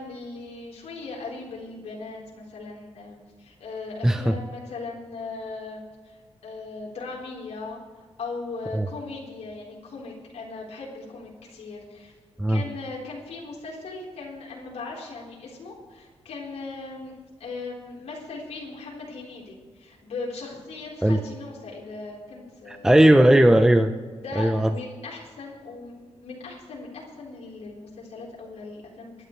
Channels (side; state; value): both; normal; correlation 0.93